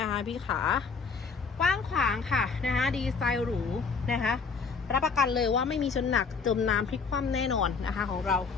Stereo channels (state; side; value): quieter; right; 5.2 dB